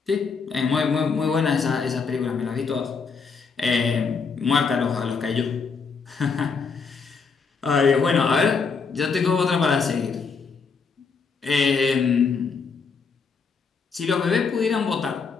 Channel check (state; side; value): quieter; right; 5.2 dB